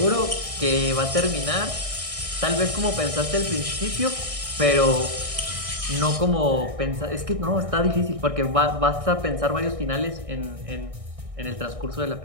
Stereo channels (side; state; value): left; late; 1.6 ms